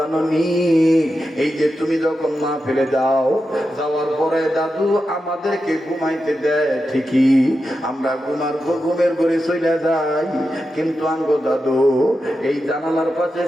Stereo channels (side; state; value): both; normal; correlation 0.89